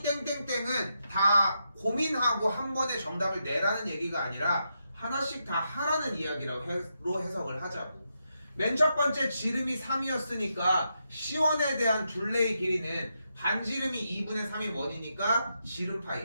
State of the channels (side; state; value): both; inverted; correlation -0.83